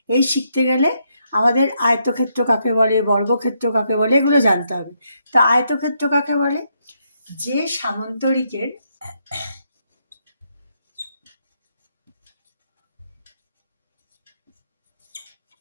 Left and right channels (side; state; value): both; inverted; correlation -0.77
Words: এই শিখতে গেলে আমাদের আয়তক্ষেত্র কাকে বলে, বর্গক্ষেত্র কাকে বলে, এগুলো জানতে হবে। তো আয়তক্ষেত্র কাকে বলে? যে সামান্তরিকের